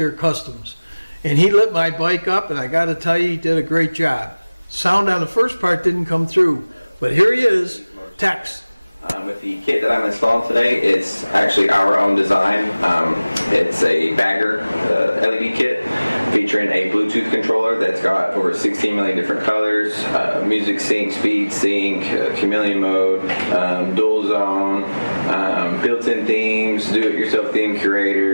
Customs, and he lit my bike up, and I got to tell you, he did a great job. Sound on the first part didn't come through, but here he is, Tex. With the kit that I'm installing today, it's actually our own design. It's a bagger LED kit featuring a Bluetooth controller that's got over 16 million different colors, music sync, speed sync, chameleon mode, dual zone, built-in themes, do-it-yourself theme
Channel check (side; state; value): both; inverted; correlation -1.00